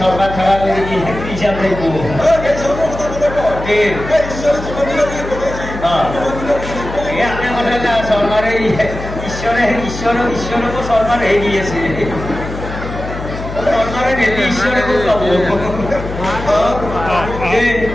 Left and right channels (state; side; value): noise; left; hum, 8 dB below the sound